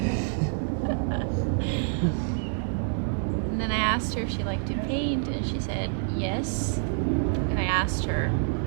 And then I asked her if she liked to paint, and she said yes. And I asked her,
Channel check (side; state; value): left; silent; digital silence